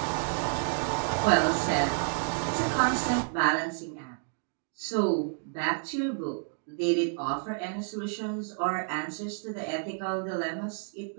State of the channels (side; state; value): left; silent; 58 dB below the other